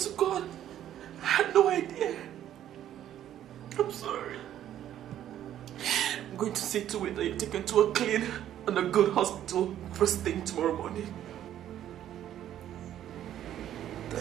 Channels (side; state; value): left; quieter; 11.4 dB